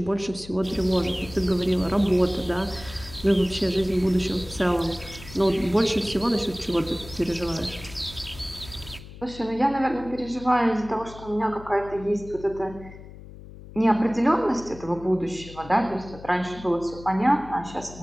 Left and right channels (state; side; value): noise; left; hum, 16 dB below the sound